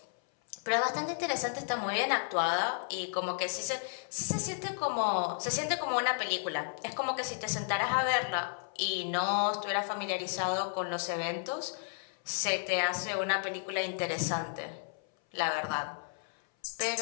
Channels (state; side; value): silent; right; 56 dB below the other